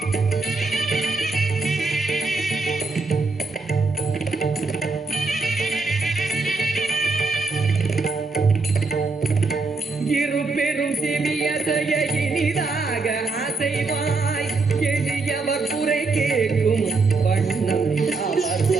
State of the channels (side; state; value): left; quieter; 3.8 dB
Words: இருபெரும் சிவியதைய இனிதாக அசைவாய், எளியவர் குறை கேட்கும் வண்ணம்